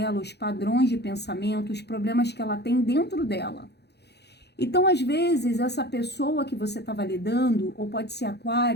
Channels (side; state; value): right; late; 0.48 ms